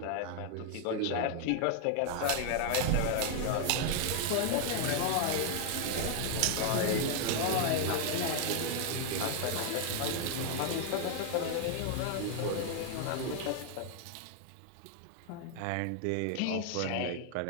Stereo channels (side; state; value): both; different; correlation 0.00